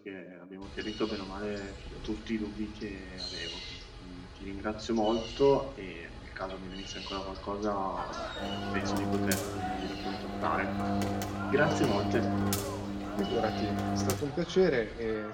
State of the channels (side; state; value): both; identical; correlation 1.00